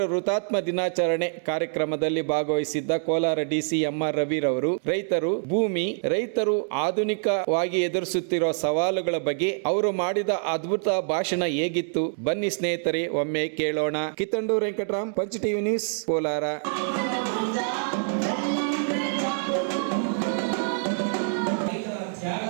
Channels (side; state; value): left; silent; digital silence